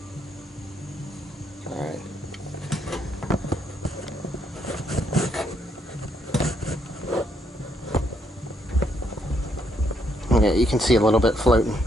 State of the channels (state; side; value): normal; both; correlation 0.74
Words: Alright. Yeah, you can see a little bit floating.